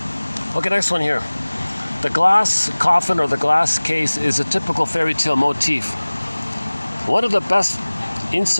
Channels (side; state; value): both; inverted; correlation -1.00